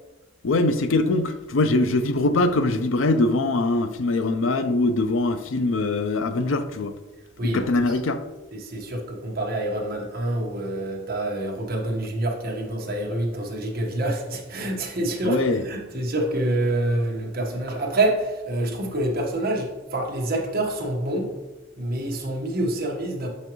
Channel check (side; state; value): both; normal; correlation 0.37